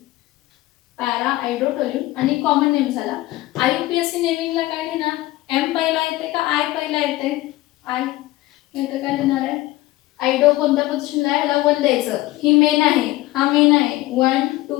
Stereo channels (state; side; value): quieter; right; 17.7 dB